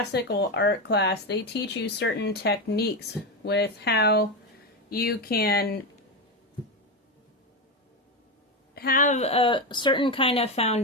art class, they teach you certain techniques with how you can have a certain kind of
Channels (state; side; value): normal; both; correlation 0.13